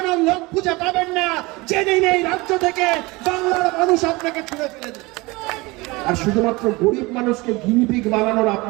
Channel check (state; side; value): quieter; left; 23.4 dB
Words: লোক খুঁজে পাবেন না। জেনে নেই রাজ্য থেকে বাংলার মানুষ আপনাকে ছুঁড়ে ফেলে দেবে। আর শুধুমাত্র গরিব মানুষকে গিনিপিগ বানানোর